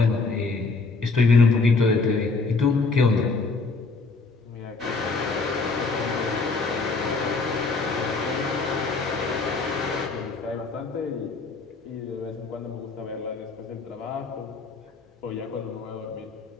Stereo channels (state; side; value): quieter; right; 4.0 dB